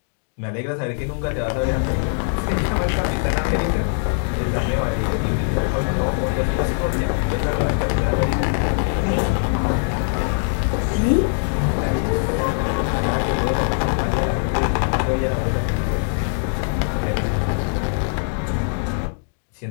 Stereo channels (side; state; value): right; silent; digital silence